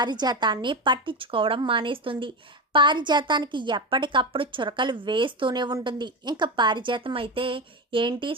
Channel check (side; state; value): both; normal; correlation 0.18